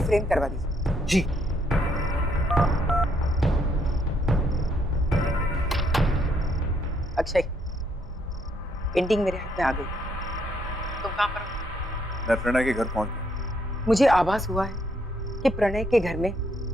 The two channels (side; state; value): both; normal; correlation 0.72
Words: फ्रेम करवा दीजिए। जी। अक्षय, पेंटिंग मेरे हाथ में आ गई। तुम कहाँ पर हो? मैं प्रणय के घर पहुंच गया। मुझे आभास हुआ है कि प्रणय के घर में